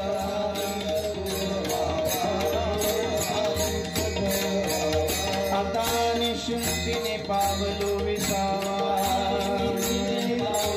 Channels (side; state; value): both; identical; correlation 1.00